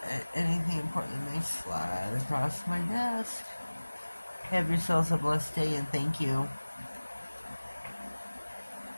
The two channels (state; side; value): inverted; both; correlation -1.00